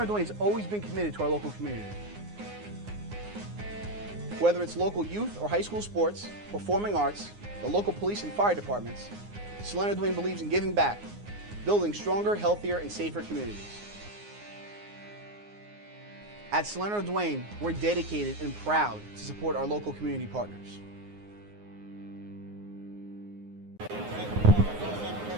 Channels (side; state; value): left; late; 9.7 ms